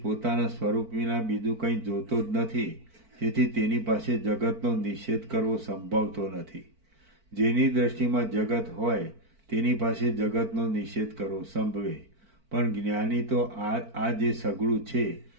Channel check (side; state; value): left; late; 4.5 ms